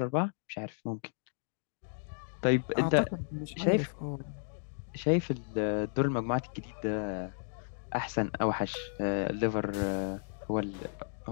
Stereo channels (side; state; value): right; silent; digital silence